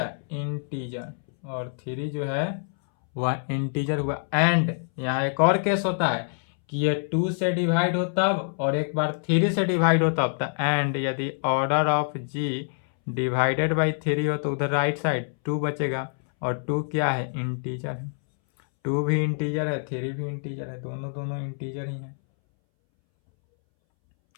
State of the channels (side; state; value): right; silent; 61 dB below the other